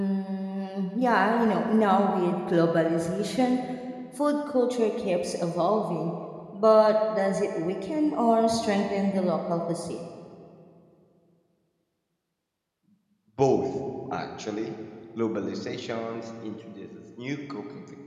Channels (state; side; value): identical; both; correlation 1.00